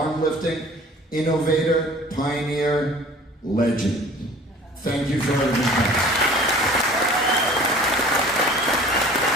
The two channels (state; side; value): normal; both; correlation 0.47